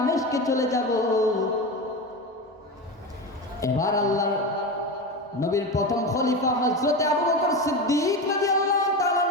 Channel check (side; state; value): both; normal; correlation 0.22